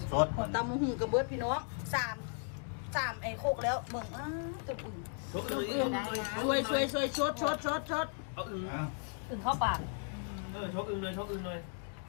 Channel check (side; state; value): right; silent; 54 dB below the other